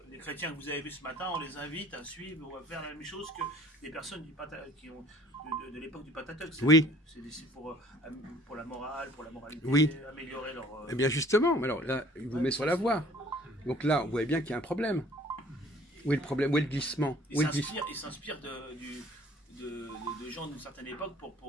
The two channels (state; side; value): normal; both; correlation 0.53